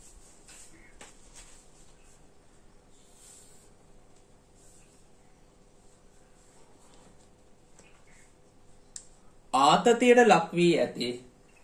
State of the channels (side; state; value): both; identical; correlation 1.00